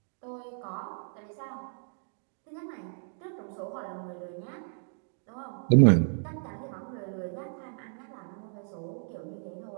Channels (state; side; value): silent; left; digital silence